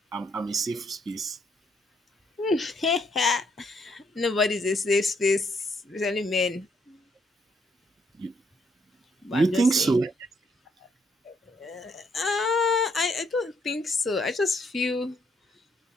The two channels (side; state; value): both; normal; correlation 0.72